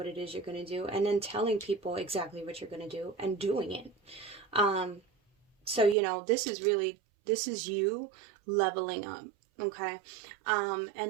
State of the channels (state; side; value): drops out; left; at 6.0 s